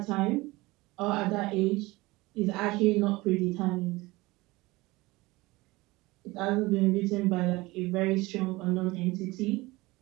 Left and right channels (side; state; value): left; quieter; 21.3 dB